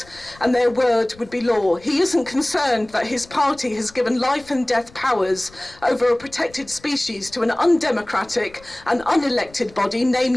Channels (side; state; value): left; noise; rumble, 24 dB below the sound